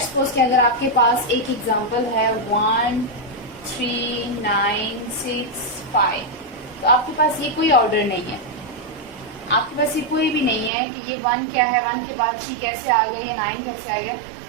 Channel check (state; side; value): drops out; left; at 10.7 s